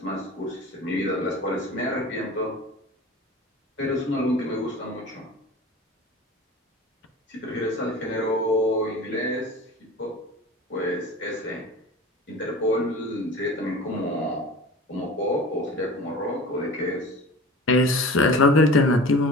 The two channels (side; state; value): both; normal; correlation 0.38